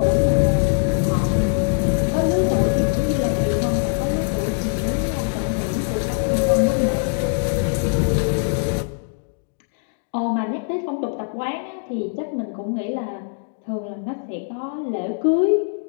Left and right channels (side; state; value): right; silent; digital silence